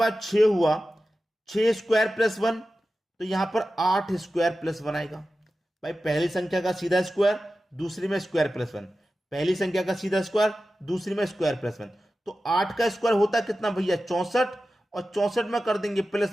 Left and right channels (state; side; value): normal; both; correlation 0.94